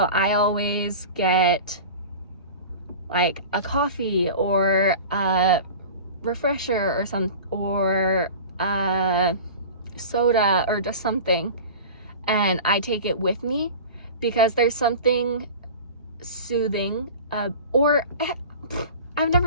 I always get like a coffee or a refresher or a soda or just something, and I take it with me because there's something soothing. Or I've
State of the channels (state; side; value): inverted; both; correlation -0.36